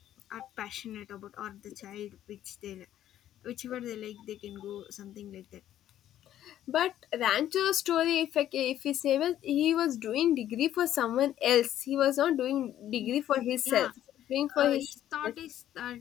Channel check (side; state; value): right; quieter; 11.8 dB